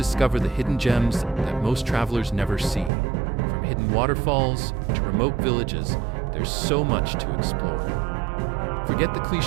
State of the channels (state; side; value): drops out; left; at 2.9 s